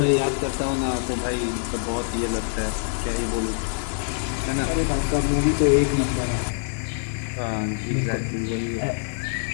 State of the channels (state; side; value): silent; right; 62 dB below the other